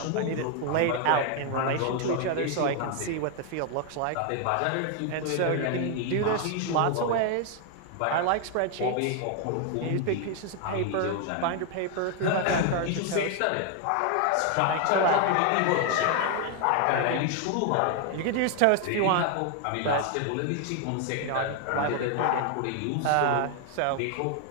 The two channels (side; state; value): both; different; correlation 0.00